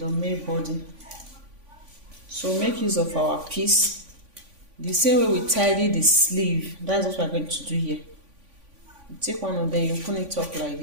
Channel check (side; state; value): left; late; 3.5 ms